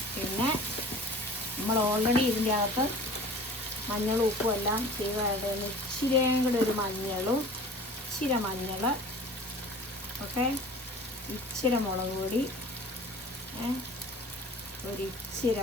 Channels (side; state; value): both; normal; correlation 0.43